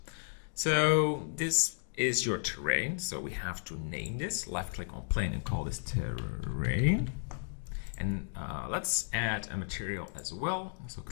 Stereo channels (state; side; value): silent; right; digital silence